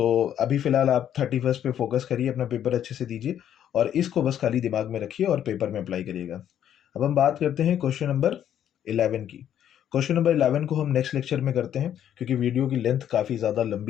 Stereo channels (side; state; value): right; quieter; 10.2 dB